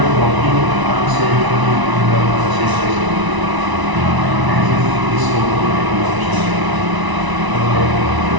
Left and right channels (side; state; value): left; late; 1.0 ms